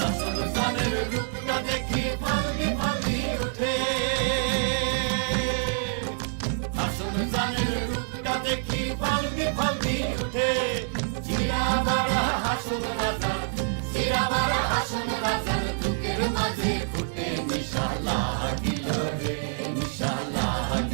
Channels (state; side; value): silent; left; digital silence